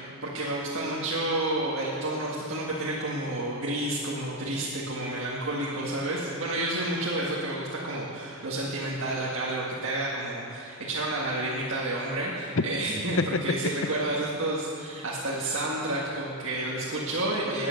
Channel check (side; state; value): both; normal; correlation 0.06